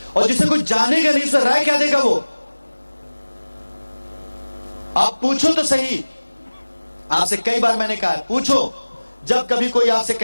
और जिसे कोई जानेगा नहीं उसमें राय क्या देगा वो? आप पूछो तो सही। आपसे कई बार मैंने कहा है, पूछो। जब कभी कोई आपसे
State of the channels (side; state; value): both; inverted; correlation -1.00